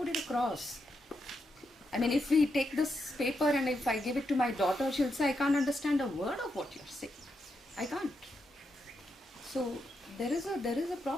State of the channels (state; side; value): normal; both; correlation 0.83